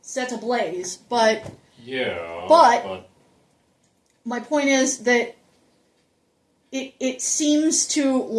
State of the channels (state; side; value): identical; both; correlation 1.00